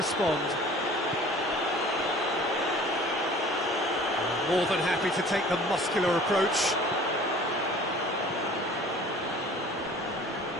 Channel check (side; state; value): both; normal; correlation 0.47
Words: More than happy to take the muscular approach.